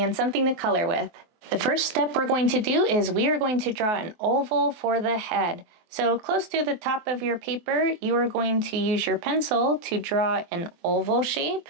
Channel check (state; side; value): late; left; 23 ms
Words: something to color with. The first step we're going to do is we are going to draw an oval for the head. So close to the top of your paper, you are going to use your pencil to draw an oval shape